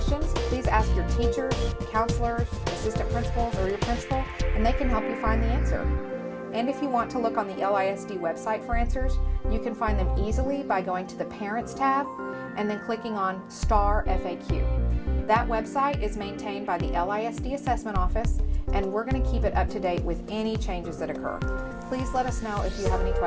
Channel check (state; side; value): identical; both; correlation 1.00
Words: please ask your teachers, counselors, assistant principals, or your principal, and they can help you find the answer. And if you want to look on the LISD website for answers, you can find them easily by going to the Parents tab and then clicking on Star FAQ. That website is maintained by the LISD Assessment Office, and we're going to keep it up to date with any changes that occur. Please let us know if you have any